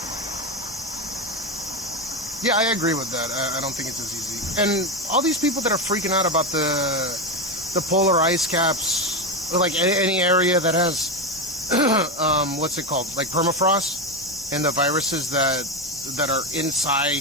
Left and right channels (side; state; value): both; normal; correlation 0.13